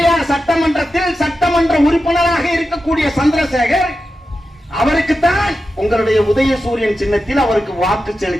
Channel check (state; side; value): normal; both; correlation 0.91